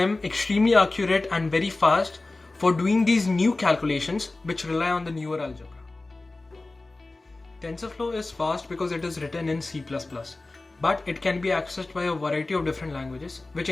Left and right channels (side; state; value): right; quieter; 3.2 dB